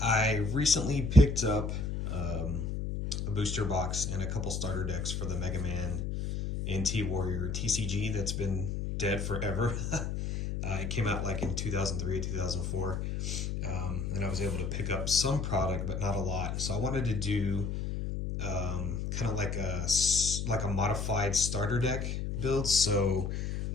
I recently picked up a booster box and a couple starter decks for the Man NT Warrior TCG that's been dead forever. It came out like in 2003 or 2004, and I was able to pick up some product, but not a lot. So I wanted to do kind of like a modified starter deck build. So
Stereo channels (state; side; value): noise; left; hum, 3 dB below the sound